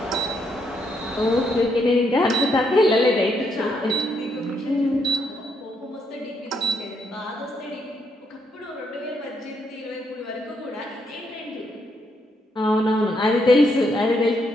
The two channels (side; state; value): both; normal; correlation 0.76